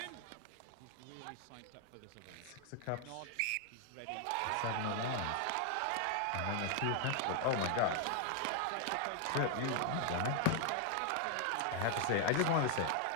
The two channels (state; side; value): different; both; correlation 0.00